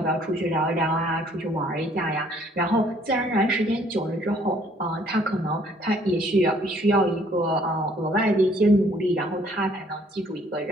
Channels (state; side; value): normal; both; correlation 0.61